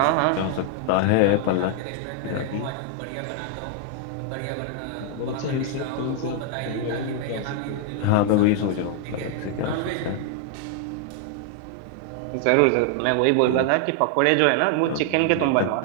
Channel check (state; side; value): different; both; correlation 0.00